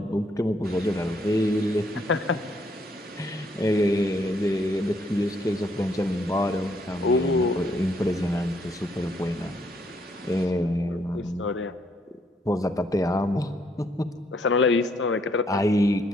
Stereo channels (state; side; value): normal; both; correlation 0.70